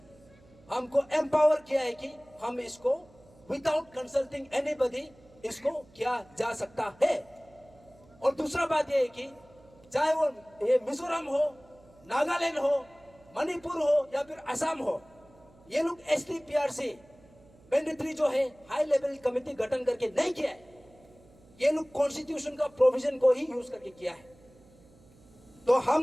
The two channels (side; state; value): right; noise; hum, 27 dB below the sound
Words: हमको एम्पावर किया है कि हम इसको विदाउट कंसल्टिंग एनीबॉडी इसको किया जा सकता है। और दूसरा बात यह है कि चाहे वो ये मिजोरम हो, नागालैंड हो, मणिपुर हो या फिर असम हो, ये लोग एसटी पीआरसी मैंडेटरी जो है हाई लेवल कमेटी गठन करके नहीं किया है, ये लोग कॉन्स्टिट्यूशन का प्रोविजन को ही यूज करके किया है। तो